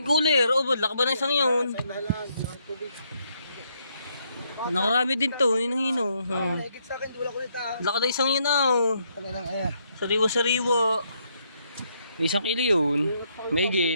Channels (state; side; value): inverted; both; correlation -0.74